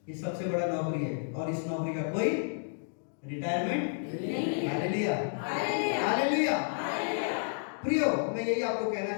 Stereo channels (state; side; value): silent; right; digital silence